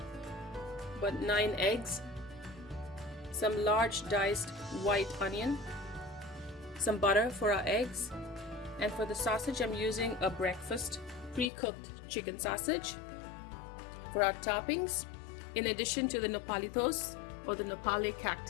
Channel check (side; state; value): right; drops out; at 11.5 s